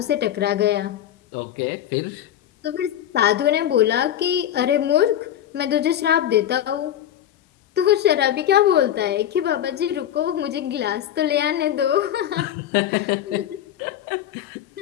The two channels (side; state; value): right; quieter; 11.2 dB